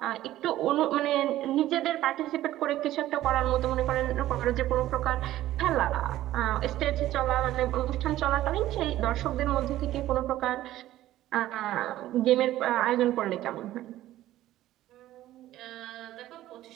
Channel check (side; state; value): left; quieter; 14.4 dB